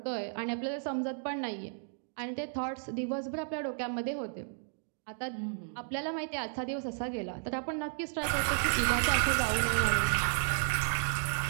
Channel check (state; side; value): silent; left; digital silence